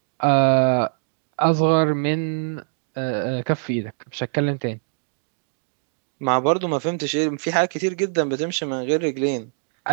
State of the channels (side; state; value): left; silent; 63 dB below the other